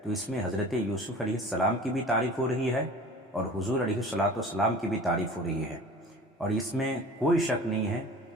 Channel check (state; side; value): normal; both; correlation 0.41